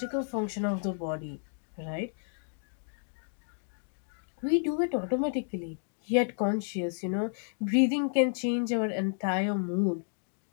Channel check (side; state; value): right; silent; digital silence